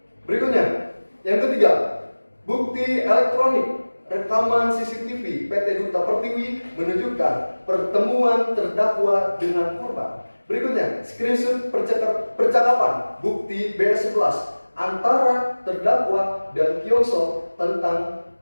Berikutnya, yang ketiga, bukti elektronik rekaman CCTV PT Duta Pertiwi menunjukkan pertemuan terdakwa dengan korban. Berikutnya, screenshot percakapan bukti B11 antara terdakwa dan Kyongso tentang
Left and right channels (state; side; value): inverted; both; correlation -1.00